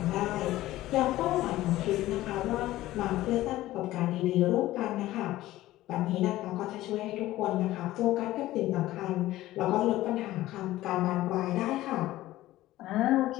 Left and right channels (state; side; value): quieter; right; 15.8 dB